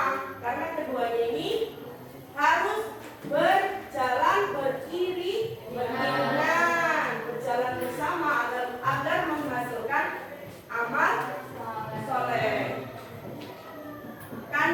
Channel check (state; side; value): identical; both; correlation 1.00